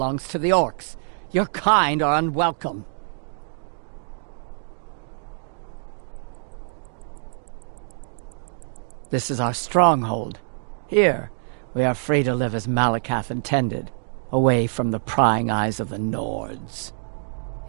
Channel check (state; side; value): silent; left; digital silence